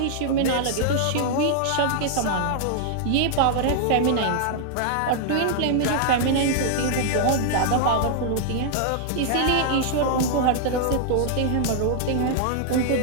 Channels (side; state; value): both; different; correlation -0.01